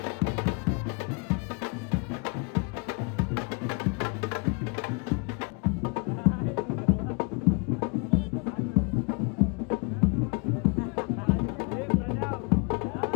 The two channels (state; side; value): quieter; right; 32.7 dB